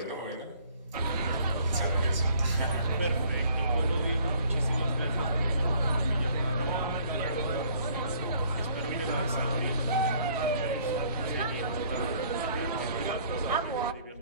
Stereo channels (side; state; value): both; inverted; correlation -0.59